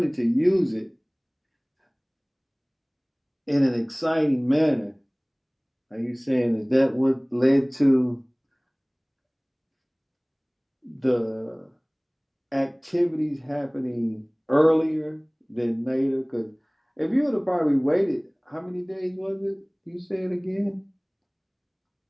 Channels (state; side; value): identical; both; correlation 1.00